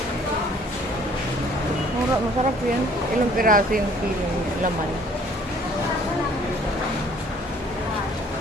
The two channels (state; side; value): normal; both; correlation 0.57